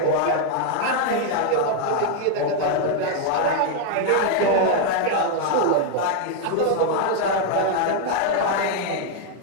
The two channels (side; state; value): both; different; correlation 0.00